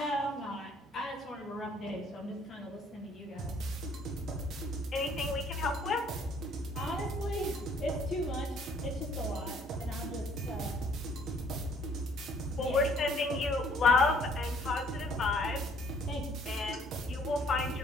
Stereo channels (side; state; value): both; normal; correlation 0.61